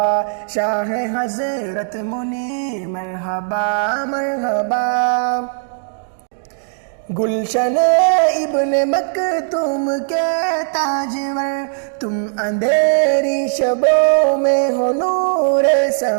شاہ حضرت منیر مرحبا مرحبا گلشن ابن مکتوم کے تاجور، تم اندھیری شبوں میں ہو نور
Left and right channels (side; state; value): left; silent; digital silence